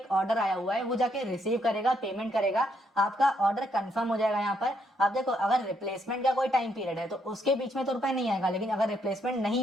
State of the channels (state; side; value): normal; both; correlation 0.74